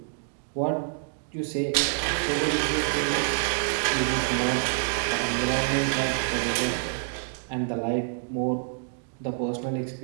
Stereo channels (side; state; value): left; silent; digital silence